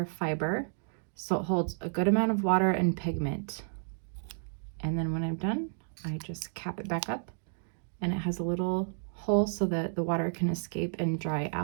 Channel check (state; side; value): silent; left; digital silence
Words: fiber, so it holds a good amount of water and pigment. And then when I'm done, I just cap it back up, and it has a little hole so that the water can escape and dry